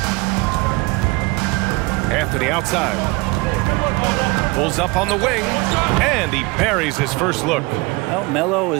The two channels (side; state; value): left; quieter; 24.8 dB